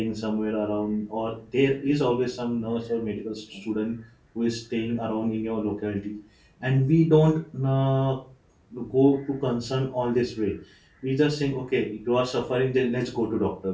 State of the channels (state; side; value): identical; both; correlation 1.00